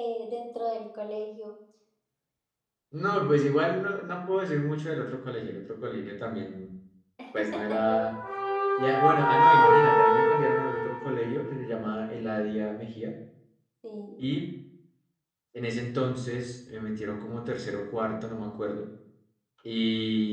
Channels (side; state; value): both; identical; correlation 1.00